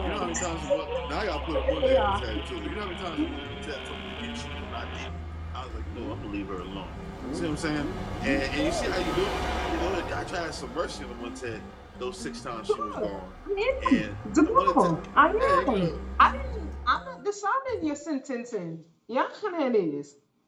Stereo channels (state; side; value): identical; both; correlation 1.00